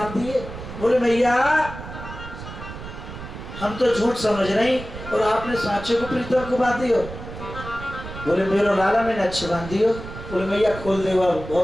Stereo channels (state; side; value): noise; right; rumble, 11 dB below the sound